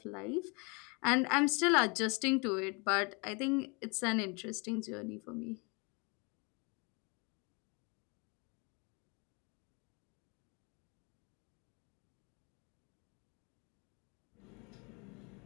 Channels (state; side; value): quieter; right; 31.0 dB